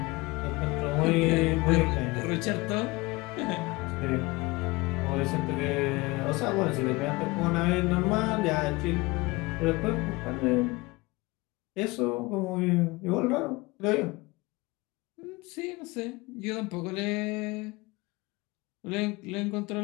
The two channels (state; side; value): quieter; right; 23.2 dB